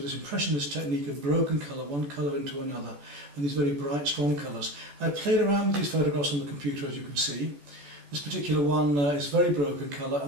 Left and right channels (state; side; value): late; left; 14 ms